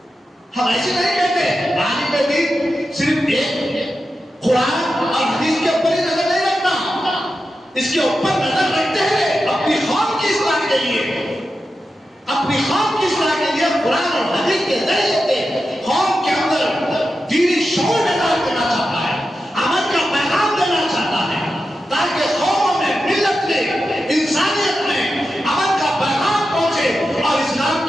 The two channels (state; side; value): normal; both; correlation 0.90